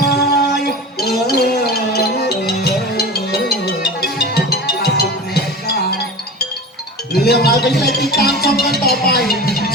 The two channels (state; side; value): normal; both; correlation 0.31